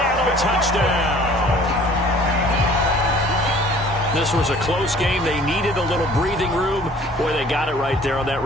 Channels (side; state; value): both; normal; correlation 0.52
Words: touchdown. This was a close game. They needed a little breathing room. Boy, they got it right there on that